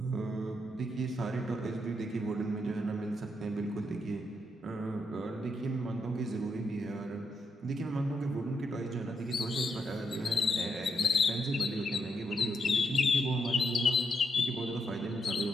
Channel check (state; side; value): normal; both; correlation 0.79